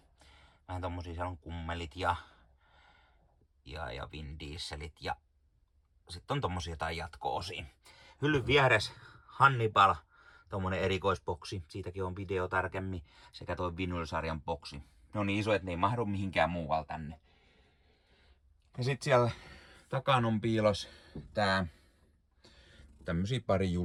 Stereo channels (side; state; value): both; identical; correlation 1.00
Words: Vähän tommosia, siellä on Kummelit ja Vin Dieselit ja sitten on tommosia jotain jatko-osia. Hyllyn vieressä Hannibal, tommonen erikoisboksi. Siitäkin on video tarkemmin. Sekä toi Vinyl-sarjan boksi. Ne on niin iso, että ne ei mahdu mihinkään muualle tänne. Ja sit siellä takana on piilos tämmösiä pari